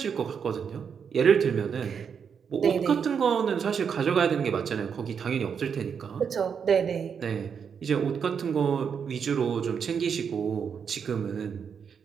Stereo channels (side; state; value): left; quieter; 6.9 dB